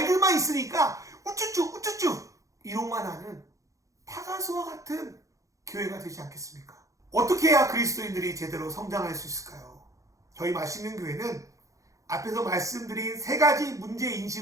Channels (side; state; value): left; late; 0.16 ms